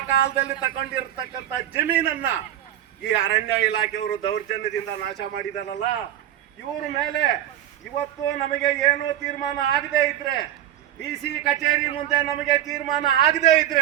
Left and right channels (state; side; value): quieter; left; 11.9 dB